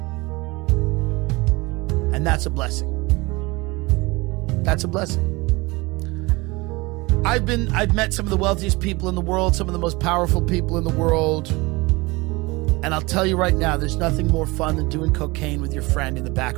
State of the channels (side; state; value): left; quieter; 23.6 dB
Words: And that's a blessing. That's a blessing. I've met some of the wealthiest people in the world, some of the most powerful people in the world. And I'll tell you right now, there's nothing more fun than doing cocaine with your friend in the